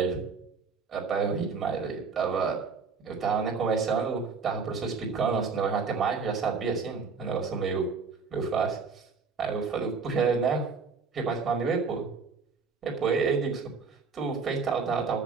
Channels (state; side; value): quieter; left; 5.0 dB